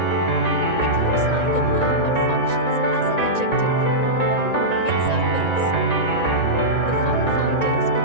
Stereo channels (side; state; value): right; late; 1.9 ms